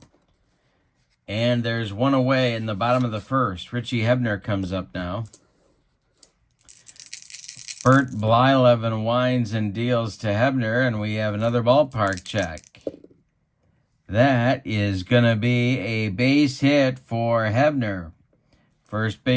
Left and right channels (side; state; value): both; identical; correlation 1.00